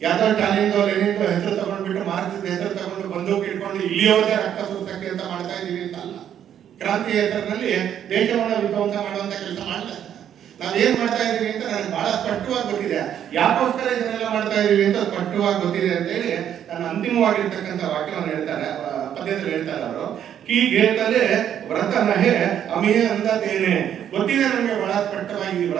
ಯಾವ್ದೋ ಟಾಲಿಂದೋ ಲೆನಿಂದೋ ಹೆಸರು ತಗೊಂಡ್ಬಿಟ್ಟು ಮಾರ್ಕ್ಸಿಸ್ಟ್ ಹೆಸರು ತಗೊಂಡು ಬಂದೂಕು ಇಟ್ಕೊಂಡು ಇಲ್ಲಿಯವರೆಗೆ ರಕ್ತ ಸುರಿಸಕ್ಕೆ ಅಂತ ಮಾಡ್ತಾ ಇದೀವಿ ಅಂತಲ್ಲ. ಕ್ರಾಂತಿ ಹೆಸರಿನಲ್ಲಿ ದೇಶವನ್ನು ವಿಧ್ವಂಸ ಮಾಡುವಂತ ಕೆಲಸ ಮಾಡಲ್ಲ. ನಾವೇನ್ ಮಾಡ್ತಾ ಇದೀವಿ ಅಂತ ನನಗೆ ಬಹಳ ಸ್ಪಷ್ಟವಾಗಿ ಗೊತ್ತಿದೆ. ಯಾಕೋಸ್ಕರ ಇದನ್ನೆಲ್ಲ ಮಾಡ್ತಾ ಇದೀವಿ ಅಂತ ಸ್ಪಷ್ಟವಾಗಿ ಗೊತ್ತಿದೆ ಅಂತ ಹೇಳಿ ನನ್ನ ಅಂತಿಮವಾಗಿರ್ತಕ್ಕಂಥ ವಾಕ್ಯವನ್ನು ಹೇಳ್ತಾರೆ, ಪದ್ಯದಲ್ಲಿ ಹೇಳ್ತಾರೆ ಅವರು. ಕೀ ಗೇತಲೆ ವ್ರತ ನಹೆ ಅಮಿಯ ಅಂದೇನೆ. ಗೊತ್ತಿದೆ ನಮಗೆ ಬಹಳ ಸ್ಪಷ್ಟವಾಗಿ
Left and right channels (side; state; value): left; quieter; 9.7 dB